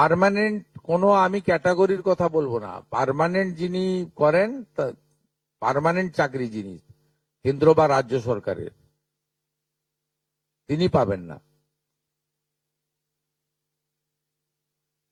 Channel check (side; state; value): both; identical; correlation 1.00